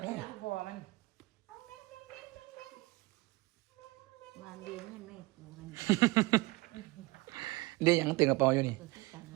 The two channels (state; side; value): quieter; left; 22.0 dB